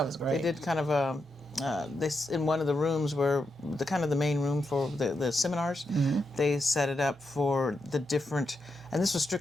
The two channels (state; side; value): normal; both; correlation 0.85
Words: was great. They did kind of a. In one of the rooms where the main room for the seminars, they set it up for the different, and this was